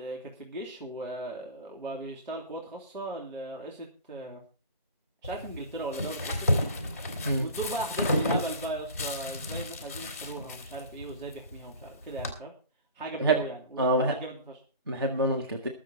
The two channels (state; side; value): inverted; both; correlation -0.35